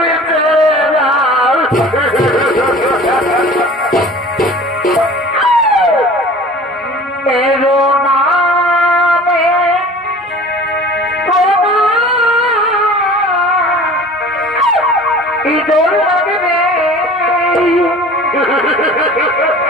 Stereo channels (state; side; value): normal; both; correlation 0.44